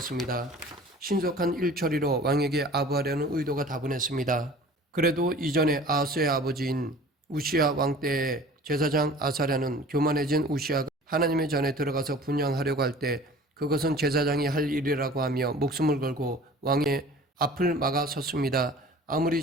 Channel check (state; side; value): normal; both; correlation 0.45